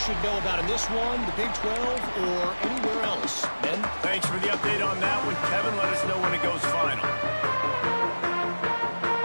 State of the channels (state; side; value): inverted; both; correlation -1.00